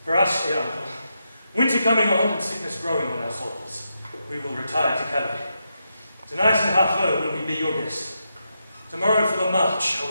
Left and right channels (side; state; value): both; inverted; correlation -0.84